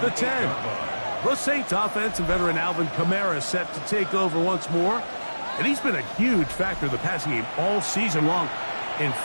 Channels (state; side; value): inverted; both; correlation -1.00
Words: the 10. The Saints offense and veteran Alvin Kamara set to take over once more. And he's been a huge factor in the passing game all season long. In